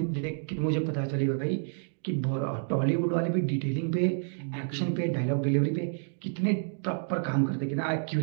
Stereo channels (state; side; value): silent; left; digital silence